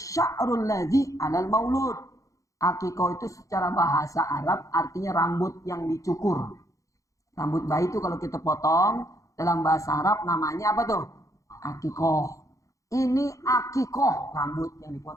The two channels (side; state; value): right; late; 0.16 ms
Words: ladzi 'alal maulud. Aqiqah itu secara bahasa Arab artinya rambut yang dicukur. Rambut bayi itu kalau kita potong, dalam bahasa Arab namanya apa tuh? Aqiqah. Ini aqiqah, rambut yang